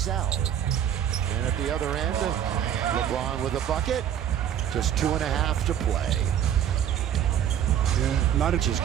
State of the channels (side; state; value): left; quieter; 9.8 dB